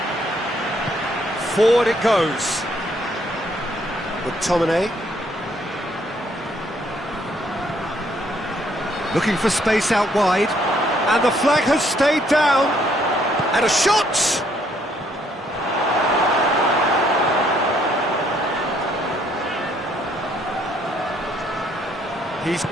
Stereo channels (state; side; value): normal; both; correlation 0.68